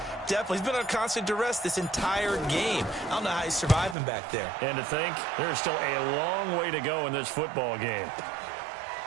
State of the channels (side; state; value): left; drops out; at 4.0 s